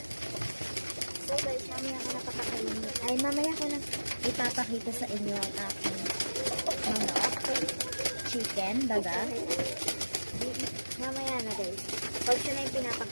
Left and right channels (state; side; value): inverted; both; correlation -1.00